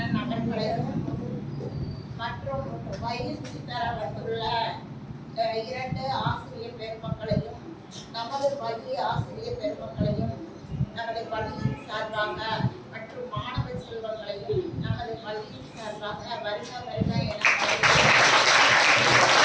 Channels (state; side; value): identical; both; correlation 1.00